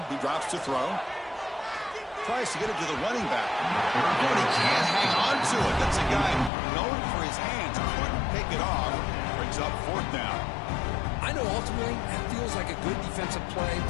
he drops to throw. Tries to get it to the running back. But he can't hang on to it. That's a guy known for his hands. Couldn't pick it off. Brings up 4th down. I know ultimately that feels like a good defensive play,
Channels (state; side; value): drops out; right; at 6.5 s